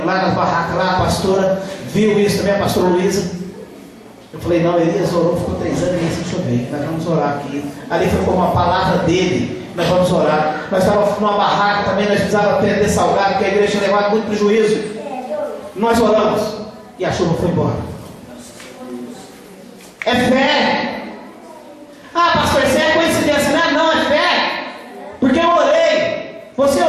nas barracas, lá a pastora viu isso também, a pastora Luísa. Eu falei, não, Elias orou, ficou 3 anos e meio sem chover, nós vamos orar aqui. Ali foi como uma palavra dele, nós vamos orar. Nós estávamos numa barraca também, nós precisávamos perder salgado, porque a igreja tinha levado muito prejuízo. Nós oramos e a chuva foi embora. É fé.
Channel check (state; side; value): identical; both; correlation 1.00